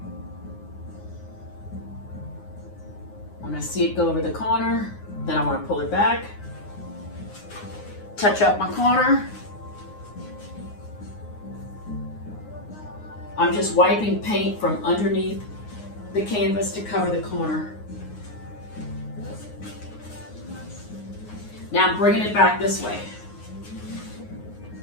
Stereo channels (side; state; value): right; late; 9.6 ms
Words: When I see it go over the corner, then I want to pull it back, touch up my corner. I'm just wiping paint from underneath the canvas to cover the corner. Now I'm bringing it back this way.